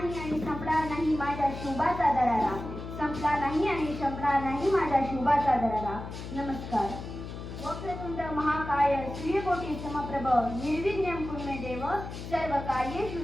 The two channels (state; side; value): noise; left; hum, 9 dB below the sound